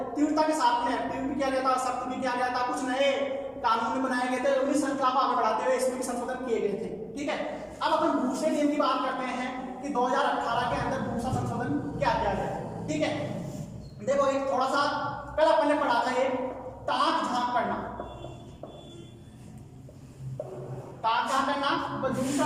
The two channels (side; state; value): both; identical; correlation 1.00